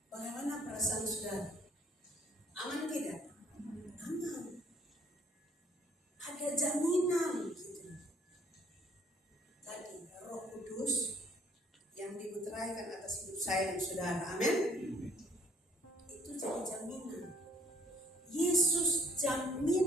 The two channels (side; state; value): both; normal; correlation 0.60